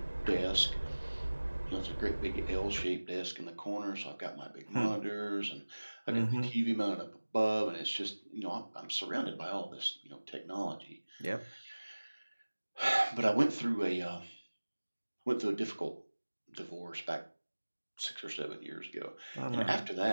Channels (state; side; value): inverted; both; correlation -1.00